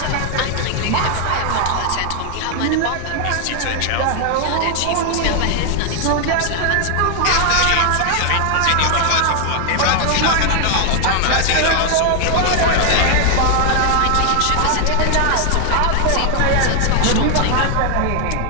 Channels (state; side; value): different; both; correlation 0.00